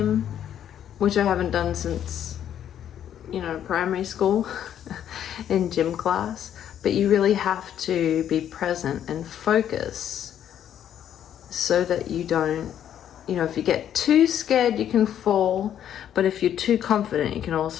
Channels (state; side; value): quieter; right; 10.1 dB